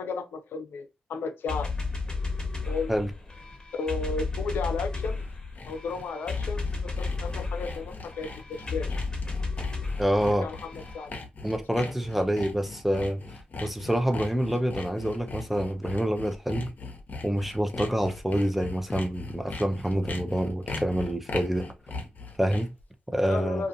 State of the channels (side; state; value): both; normal; correlation 0.90